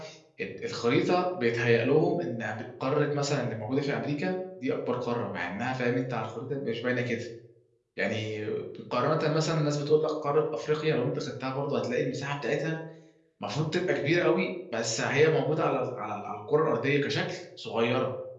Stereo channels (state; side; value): identical; both; correlation 1.00